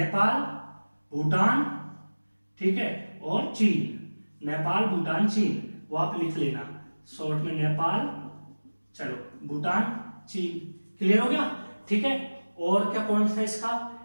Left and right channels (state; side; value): inverted; both; correlation -1.00